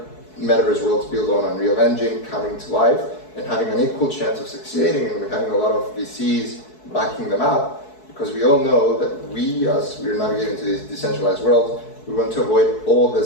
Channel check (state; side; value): late; right; 4.6 ms